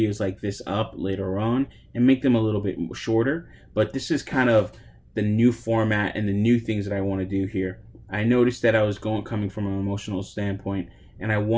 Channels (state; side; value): identical; both; correlation 1.00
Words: like this up later on and make them a little bit shorter. But this is kind of the new format and the new things that I want to do here. I noticed that I was coming from an emotional standpoint, and I